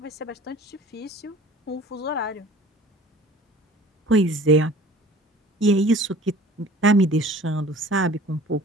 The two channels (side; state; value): both; normal; correlation 0.47